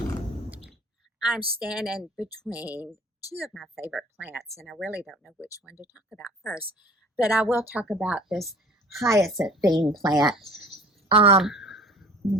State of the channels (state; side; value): normal; both; correlation 0.46